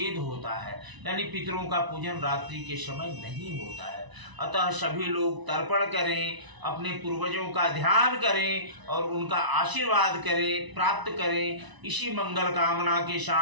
होता है, यानी पितरों का पूजन रात्रि के समय नहीं होता है। अतः सभी लोग तर्पण करें, अपने पूर्वजों का ध्यान करें और उनका आशीर्वाद करें, प्राप्त करें। इसी मंगल कामना के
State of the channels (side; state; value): left; late; 1.0 ms